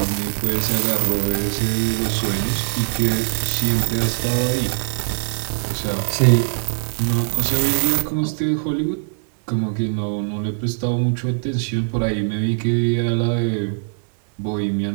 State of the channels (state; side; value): silent; left; 65 dB below the other